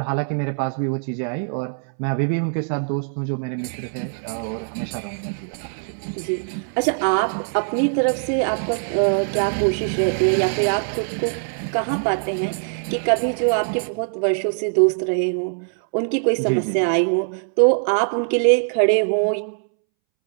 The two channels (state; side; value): silent; left; 64 dB below the other